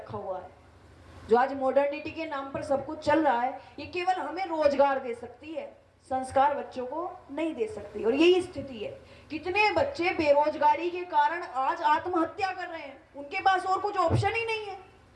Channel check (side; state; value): both; identical; correlation 1.00